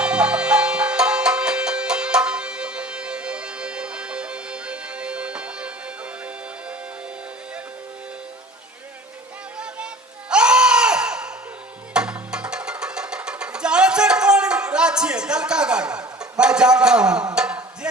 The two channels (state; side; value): normal; both; correlation 0.44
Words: जाने कौन राज छियै दलका गाड़ी मैं जानता हूँ,